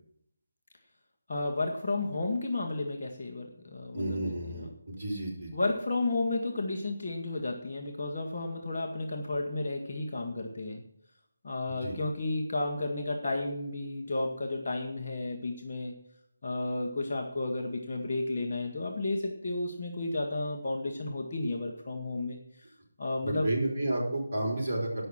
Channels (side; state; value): both; inverted; correlation -0.88